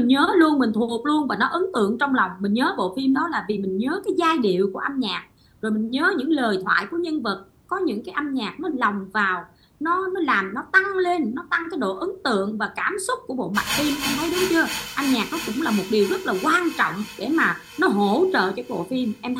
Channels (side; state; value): both; identical; correlation 1.00